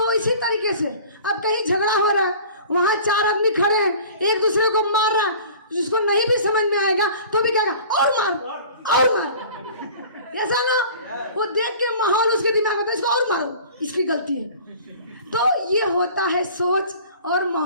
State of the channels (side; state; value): both; inverted; correlation -0.44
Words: इसी तरीके से अब कहीं झगड़ा हो रहा है, वहां चार आदमी खड़े हैं, एक दूसरे को मार रहा, जिसको नहीं भी समझ में आएगा तो भी कहेगा और मार और मार। ऐसा ना। वो देख के माहौल उसके दिमाग में, इसको और मारो, इसकी गलती है। तो ये होता है सोच और